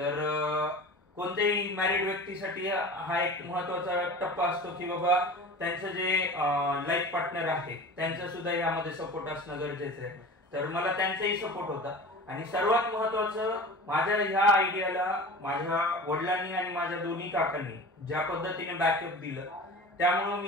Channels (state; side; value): normal; both; correlation 0.36